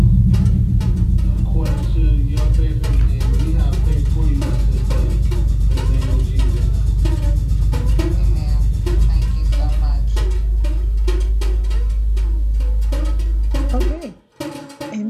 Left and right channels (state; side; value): identical; both; correlation 1.00